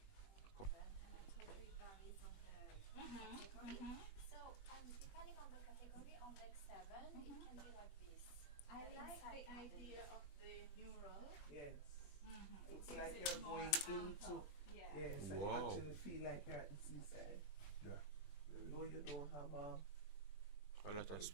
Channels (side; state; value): right; late; 21 ms